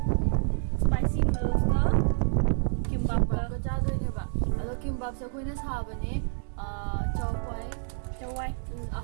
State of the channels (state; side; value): silent; left; digital silence